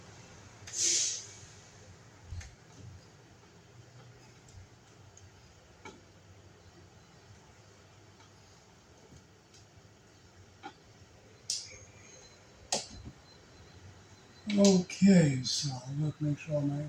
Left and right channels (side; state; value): both; identical; correlation 1.00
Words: Okay, so look, make sure my